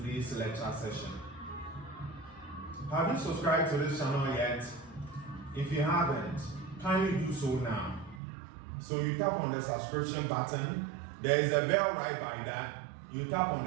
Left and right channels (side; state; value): left; drops out; at 8.2 s